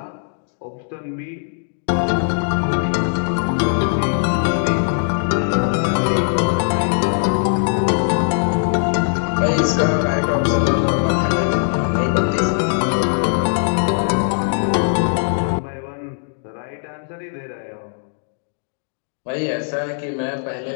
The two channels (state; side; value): silent; right; 66 dB below the other